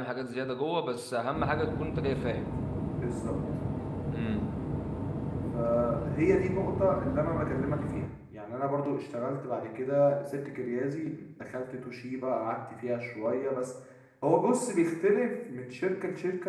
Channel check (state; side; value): identical; both; correlation 1.00